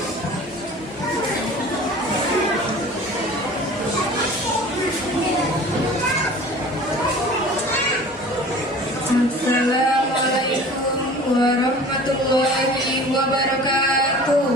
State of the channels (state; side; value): normal; both; correlation 0.43